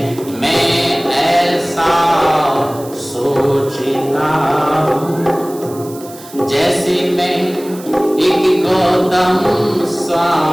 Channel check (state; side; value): noise; right; hiss, 19 dB below the sound